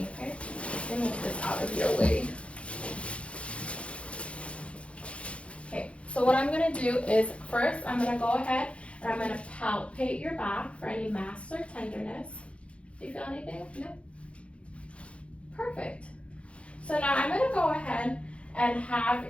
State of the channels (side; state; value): right; late; 0.061 ms